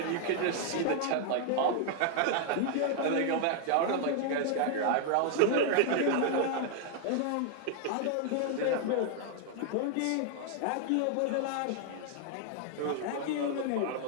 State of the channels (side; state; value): both; different; correlation 0.00